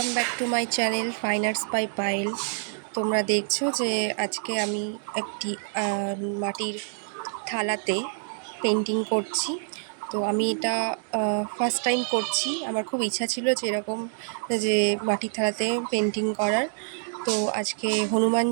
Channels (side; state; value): left; silent; digital silence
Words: back to my channel fine arts by Payel. তোমরা দেখছো যে আজকে আমি একটি মাটির থালাতে পেন্টিং করছি। তো আমি এটা ফার্স্ট টাইম করছি। আমার খুব ইচ্ছা ছিল যে এরকম যে মাটির থালাতে পেন্টিং করার। তো আজকে হনুমান